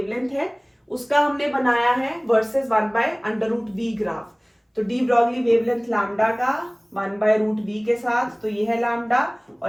है उसका हमने बनाया है versus 1 by under root v graph. तो डी ब्रॉगली वेवलेंथ लैम्डा का 1 बाय रूट वी के साथ, तो ये है लैम्डा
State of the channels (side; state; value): both; identical; correlation 1.00